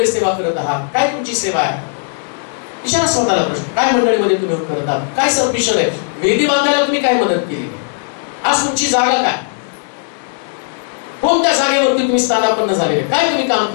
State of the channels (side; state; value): right; silent; 69 dB below the other